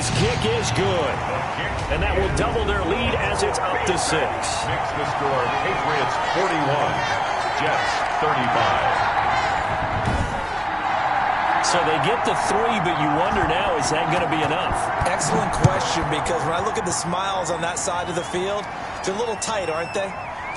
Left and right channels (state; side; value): identical; both; correlation 1.00